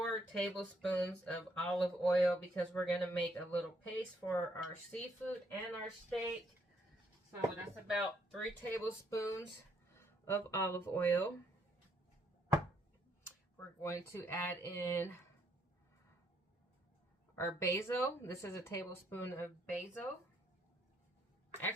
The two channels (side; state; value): both; normal; correlation 0.71